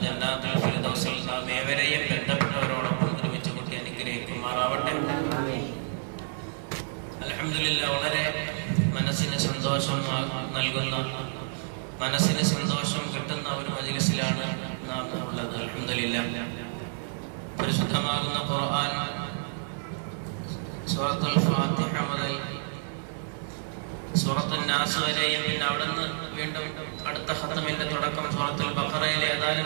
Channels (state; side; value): silent; left; digital silence